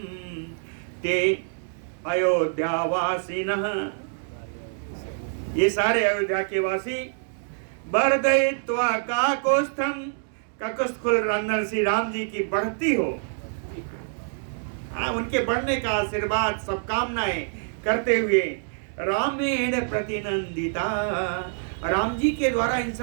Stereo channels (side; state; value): left; silent; digital silence